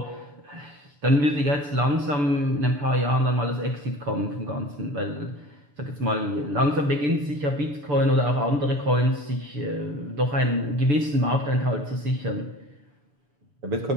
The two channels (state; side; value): late; left; 6.8 ms